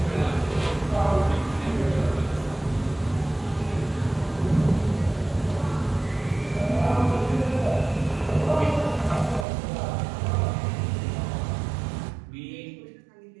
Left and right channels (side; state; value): left; drops out; at 9.5 s